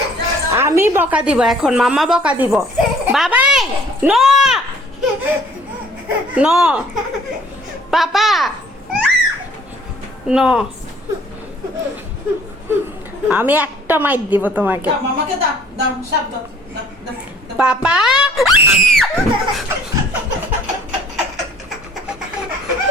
আমি বকা দিব এখন, মাম্মা বকা দিব। বাবাই নো নো, পাপা নো। আমি একটা মাইর দিব তোমাকে। মামাকে দাও দাও সাপ দাও দাও। পাপা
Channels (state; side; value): normal; both; correlation 0.56